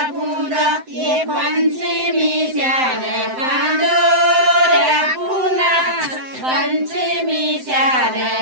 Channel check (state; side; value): late; left; 7.8 ms